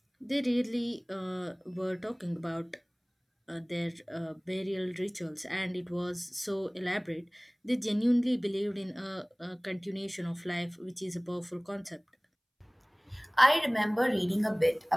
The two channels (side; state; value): both; identical; correlation 1.00